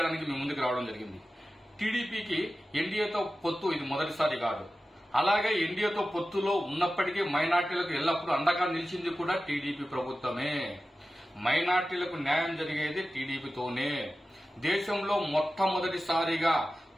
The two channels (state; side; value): normal; both; correlation 0.94